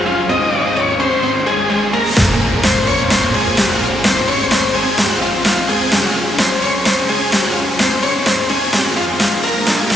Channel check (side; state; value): both; normal; correlation 0.78